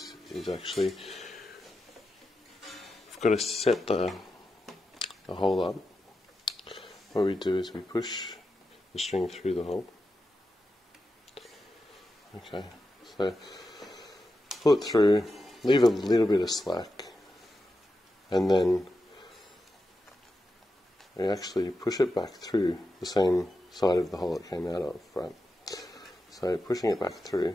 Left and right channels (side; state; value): both; normal; correlation 0.89